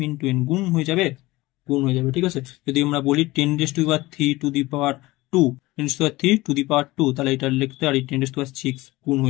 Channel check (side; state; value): right; quieter; 19.7 dB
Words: ইন্টু n, গুণ হয়ে যাবে, গুণ হয়ে যাবে। ঠিক আছে, যদি আমরা বলি 10⁻³ two the power 2, 10⁻³ two the পাওয়ার 2, তাহলে এটা লিখতে পারি 10⁻6 গুণ